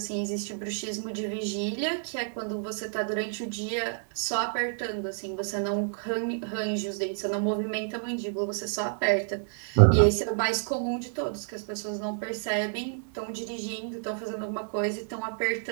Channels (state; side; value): silent; left; digital silence